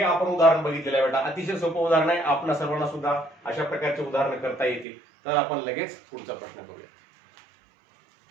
आपण उदाहरण बघितलेलं आहे बेटा. अतिशय सोपं उदाहरण आहे, आपल्या सर्वांना सुद्धा अशा प्रकारचे उदाहरण करता येतील. तर आपण लगेच पुढचा प्रश्न करूया.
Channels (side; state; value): left; drops out; at 4.9 s